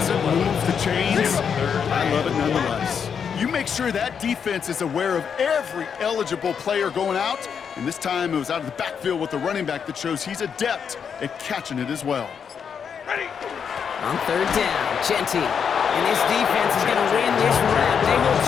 move the chains. I love it nonetheless. You make sure that defense is aware of every eligible player going out. And this time it was out of the backfield with the running back that shows he's adept at catching it as well. On 3rd down, Genty. And this defense is going to win this round. They hold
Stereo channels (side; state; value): right; quieter; 7.0 dB